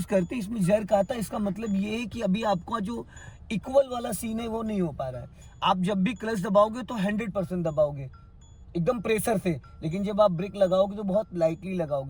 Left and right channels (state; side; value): identical; both; correlation 1.00